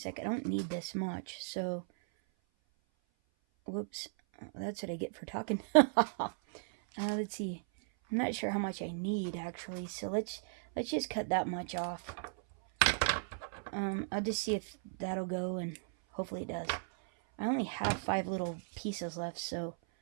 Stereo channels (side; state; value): left; silent; 54 dB below the other